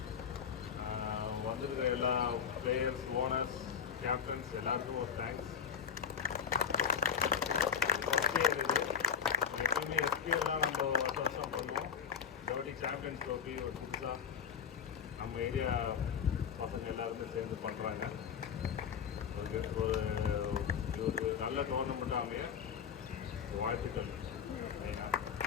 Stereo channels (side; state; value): right; quieter; 7.4 dB